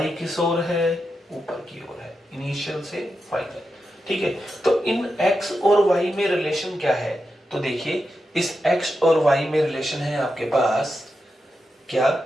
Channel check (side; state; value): both; normal; correlation 0.88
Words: किस ओर है? ऊपर की ओर है, इनिशियल से फाइनल। ठीक है, तो इन x और y में रिलेशन क्या है? तो देखिए, इस x और y में रिलेशन है आपके पास क्या?